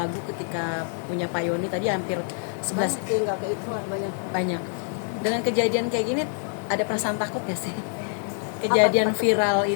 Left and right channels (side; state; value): right; silent; 61 dB below the other